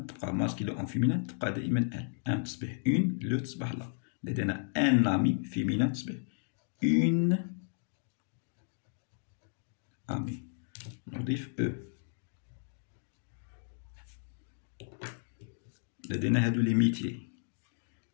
masculin en féminin تبقى دائما elle. un تصبح une le تصبح la. لدينا un ami féminin تصبح une amis. نضيف E. لدينا هادو لي ميتي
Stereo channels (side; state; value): right; silent; digital silence